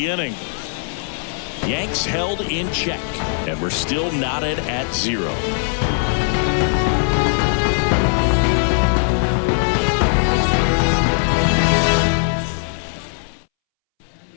inning. Yanks held in check. And we're still knotted at 0.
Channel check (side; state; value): right; silent; 66 dB below the other